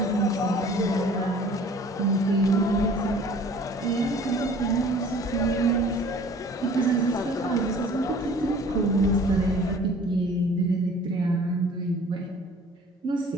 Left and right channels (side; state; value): both; normal; correlation 0.49